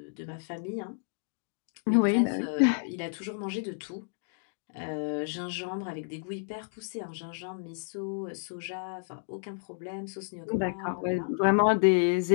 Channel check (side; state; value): right; silent; digital silence